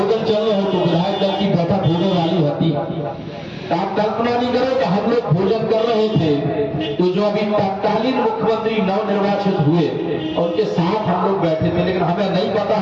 चल रहे हो तो विधायक दल की बैठक होने वाली होती। तो आप कल्पना नहीं करो कि हम लोग भोजन कर रहे थे तो जो अभी तत्कालीन मुख्यमंत्री नवनिर्वाचित हुए उनके साथ हम लोग बैठे थे, लेकिन हमें नहीं पता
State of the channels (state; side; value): identical; both; correlation 1.00